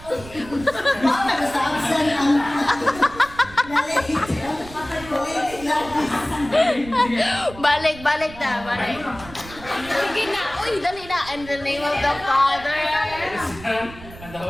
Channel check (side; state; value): right; noise; rumble, 17 dB below the sound